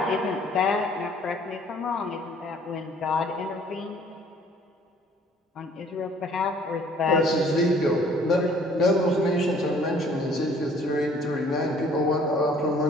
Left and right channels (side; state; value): both; normal; correlation 0.57